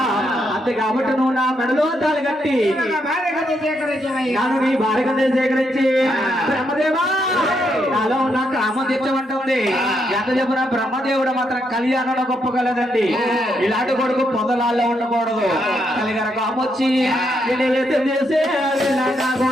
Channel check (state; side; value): normal; both; correlation 0.78